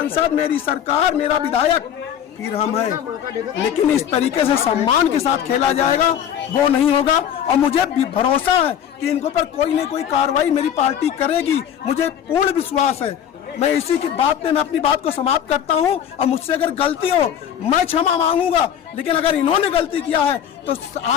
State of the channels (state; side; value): quieter; right; 9.3 dB